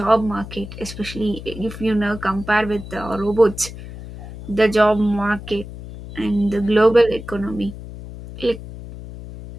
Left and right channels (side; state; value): left; noise; hum, 13 dB below the sound